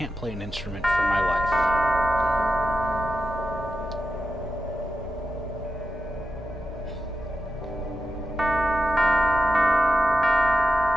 play an instrument for my life.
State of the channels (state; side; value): normal; both; correlation 0.90